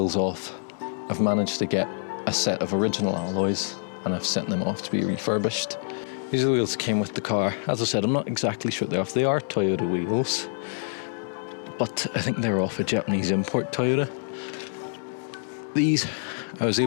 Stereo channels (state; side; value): silent; right; digital silence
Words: off. I've managed to get a set of original alloys and I've sent them off to be refurbished. These are the wheels that came with the car. As I said, I'm not exactly sure they're off. They are Toyota wheels, but I think they're off a Japanese import Toyota. These I was